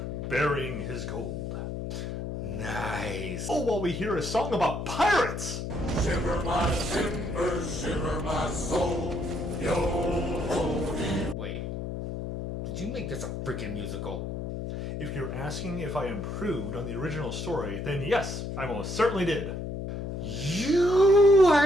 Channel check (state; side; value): noise; left; hum, 5 dB below the sound